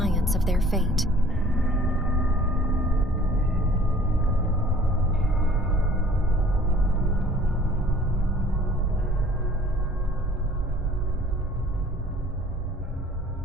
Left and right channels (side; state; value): both; normal; correlation 0.52